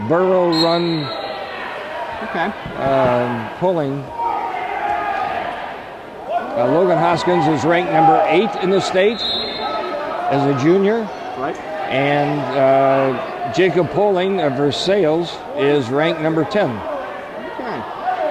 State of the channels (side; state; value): both; identical; correlation 1.00